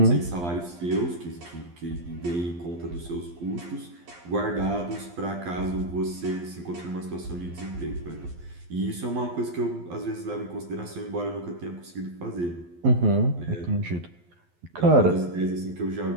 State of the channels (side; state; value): left; late; 12 ms